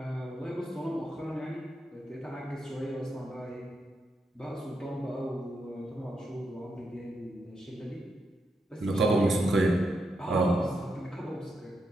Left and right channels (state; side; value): normal; both; correlation 0.83